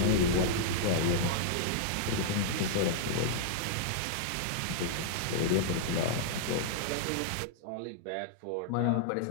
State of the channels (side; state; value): both; different; correlation -0.01